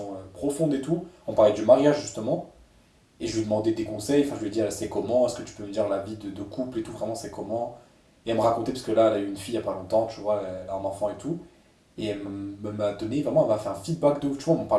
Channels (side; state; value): both; identical; correlation 1.00